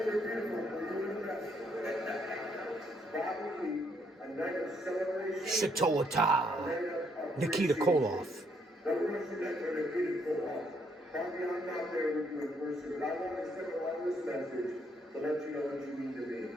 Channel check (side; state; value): both; normal; correlation 0.71